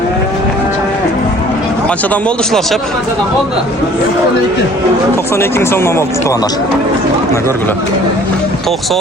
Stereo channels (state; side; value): normal; both; correlation 0.53